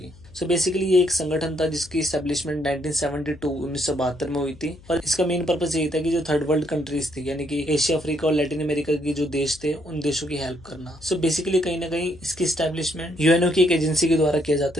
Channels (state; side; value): noise; left; hum, 23 dB below the sound